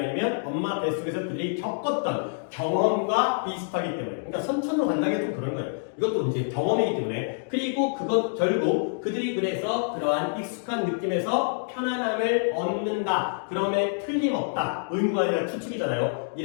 엄마 뱃속에서 그들이 겪었던 경험과 비슷하기 때문에. 그러니까 선천으로 간다는 게 좀 그런 거예요. 이것도 이제 경험이기 때문에. 그리고 그것 결국 그들이 그래서 그러한 익숙한 느낌에서 편안함을 얻는다. 그럼에 틀림없다. 의무가 아니라 추측이잖아요.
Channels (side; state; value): right; silent; digital silence